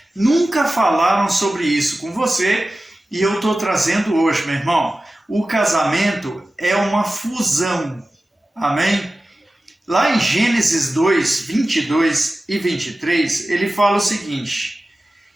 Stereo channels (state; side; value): normal; both; correlation 0.95